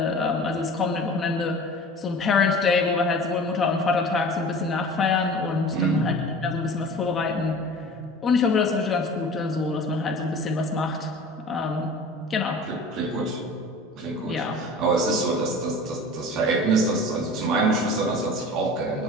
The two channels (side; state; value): both; normal; correlation 0.40